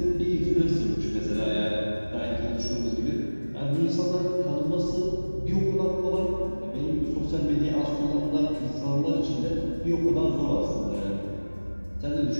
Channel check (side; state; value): both; inverted; correlation -1.00